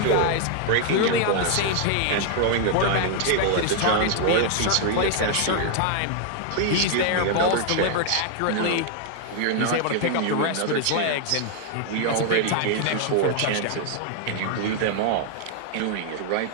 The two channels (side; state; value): both; different; correlation 0.00